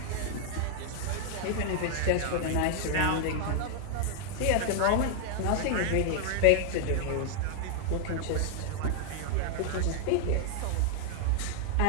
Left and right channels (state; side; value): different; both; correlation 0.00